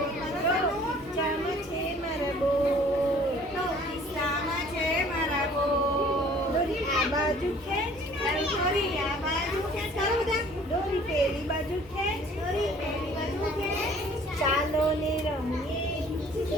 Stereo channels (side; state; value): both; normal; correlation 0.53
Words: ખિસ્સામાં છે મારા બોર, ખિસ્સામાં છે મારા બોર. દોરી આ બાજુ ખેંચ, દોરી આ બાજુ ખેંચ, ચાલો બધા. દોરી પેલી બાજુ ખેંચ, દોરી પેલી બાજુ ખેંચ. ચાલો ને રમીએ,